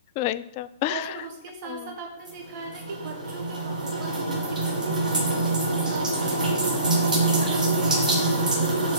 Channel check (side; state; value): both; inverted; correlation -0.46